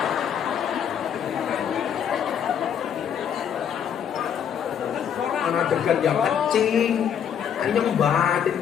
Ana degan yang kecing. Anyong batin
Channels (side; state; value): right; quieter; 8.5 dB